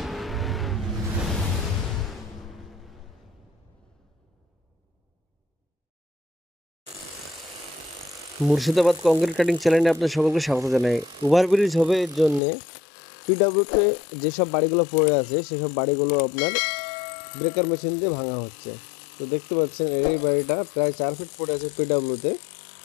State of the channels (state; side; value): drops out; right; at 12.4 s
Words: Murshidabad concrete cutting চ্যানেলে আপনার সকলকে স্বাগত জানাই। ওভারব্রিজ হবে এর জন্যে পিডাব্লিউতে যেসব বাড়িগুলো পড়ে আছে সেসব বাড়িগুলো আপনার ব্রেকার মেশিন দিয়ে ভাঙা হচ্ছে। তো দেখতে পাচ্ছেন এই বাড়িটা প্রায় 4 ফিট পড়ে আছে পিডাব্লিউতে,